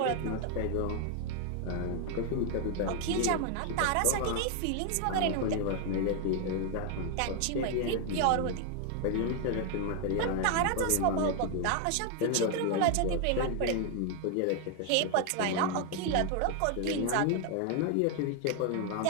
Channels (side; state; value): both; different; correlation 0.00